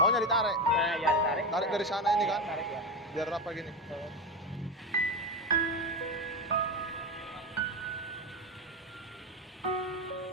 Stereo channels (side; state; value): both; normal; correlation 0.18